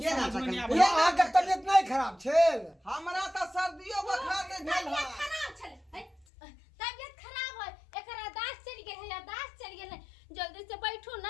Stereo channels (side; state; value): right; drops out; at 6.2 s